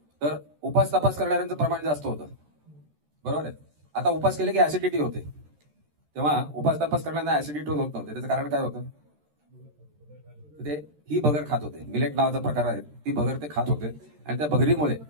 तर उपास तपास करणाऱ्यांचं प्रमाण जास्त होतं, बरोबर आहे. आता उपास केले की ऍसिडिटी होते, तेव्हा उपास तपास करणाऱ्यांना ऍसिडिटी होत नव्हते. त्याचं कारण काय होतं, ते ही भगर खात होते. मिलेट नावाचा प्रकार आहे, ती भगर ते खात होते आणि त्या भगरीमुळे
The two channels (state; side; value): late; left; 13 ms